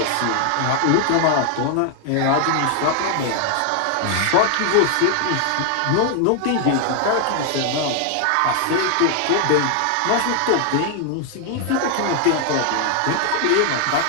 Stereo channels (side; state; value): both; different; correlation 0.00